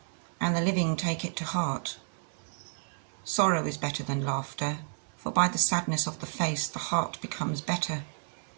and the living take it to heart. Sorrow is better than laughter, for by the sadness of the face the heart becomes better.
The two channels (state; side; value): silent; left; 57 dB below the other